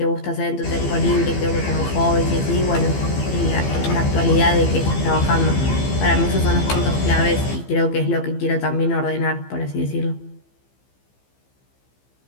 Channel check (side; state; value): right; late; 15 ms